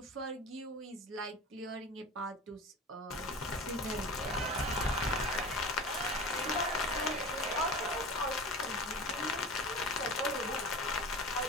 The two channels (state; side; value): normal; both; correlation 0.33